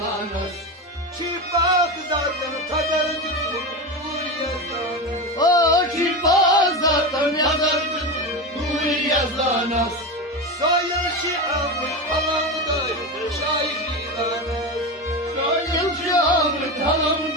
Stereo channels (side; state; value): both; normal; correlation 0.20